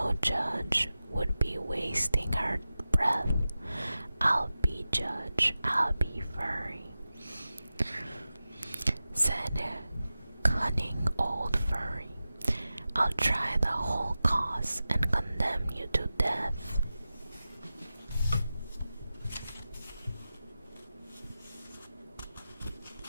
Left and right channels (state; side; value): inverted; both; correlation -0.94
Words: judge, would be wasting her breath. I'll be judge, I'll be furry," said cunning old furry. "I'll try the whole cause and condemn you to death."